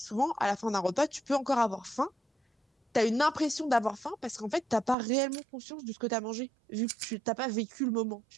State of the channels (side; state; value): left; drops out; at 5.0 s